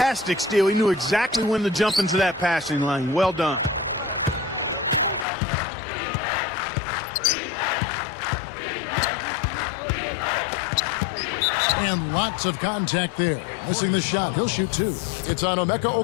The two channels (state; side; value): drops out; right; at 5.2 s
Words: steal. He knew exactly when to jump into that passing lane. Well done. And lots of contact there. Missing the shot. He'll shoot 2. It's on Emeka